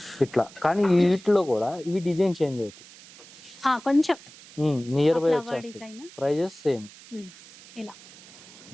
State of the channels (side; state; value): right; noise; hiss, 20 dB below the sound